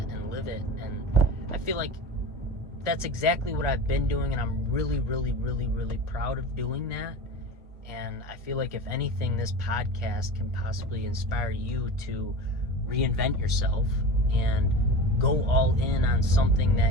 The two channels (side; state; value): both; normal; correlation 0.30